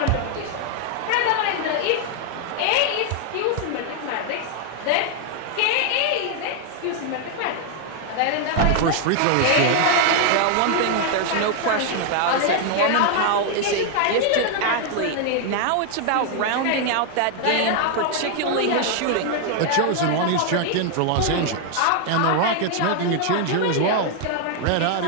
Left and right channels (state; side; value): different; both; correlation 0.00